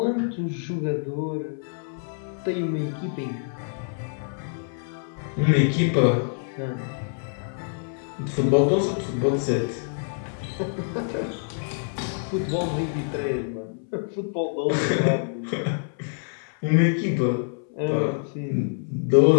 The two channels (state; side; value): silent; right; 61 dB below the other